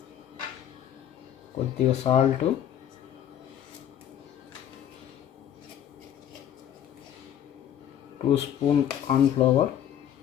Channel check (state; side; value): quieter; right; 10.1 dB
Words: కొద్దిగా salt, two spoon corn flour,